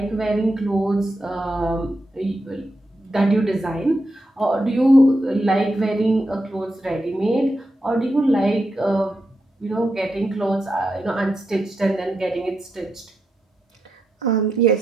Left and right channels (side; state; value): both; normal; correlation 0.85